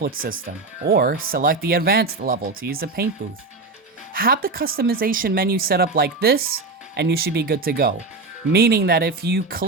system, or select the advanced level to use the paint booth. Have the customization menu set up like this, and you should be good to go. Meaning that if you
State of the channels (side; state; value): left; quieter; 3.6 dB